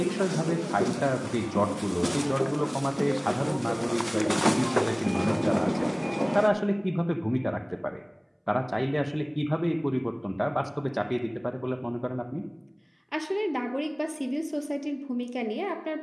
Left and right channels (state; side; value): identical; both; correlation 1.00